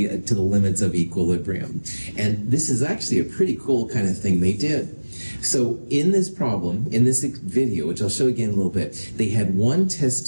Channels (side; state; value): both; inverted; correlation -1.00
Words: to the limits of equilibrium. And this is actually a pretty cool kind of thing they did. So in this problem, in this video, which I'll show again in a little bit, they had one test